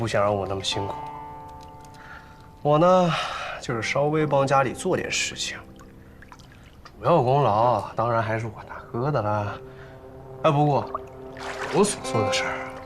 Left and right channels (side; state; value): both; identical; correlation 1.00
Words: 想让我那么辛苦。我呢，就是稍微帮家里做点事情，主要功劳当然还是我大哥的啦。哎，不过我所做的事儿